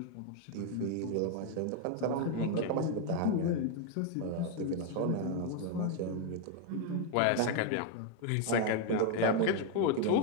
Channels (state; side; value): different; both; correlation 0.01